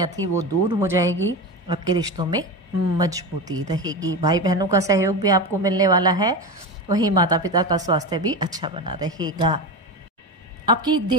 थी वो दूर हो जाएगी। आपके रिश्तों में मजबूती रहेगी। भाई बहनों का सहयोग भी आपको मिलने वाला है। वहीं माता पिता का स्वास्थ्य भी अच्छा बना रहेगा। आपकी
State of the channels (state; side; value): normal; both; correlation 0.21